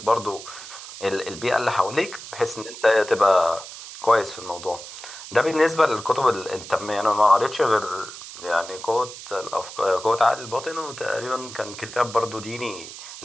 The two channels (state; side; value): noise; right; hiss, 13 dB below the sound